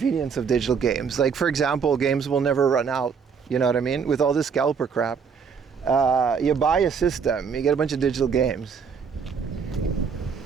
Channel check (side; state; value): left; quieter; 6.2 dB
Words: of digital games. Like, for example, games will never run out. You know what I mean? With all this scalper crap. You buy a system, you get a bunch of digital games.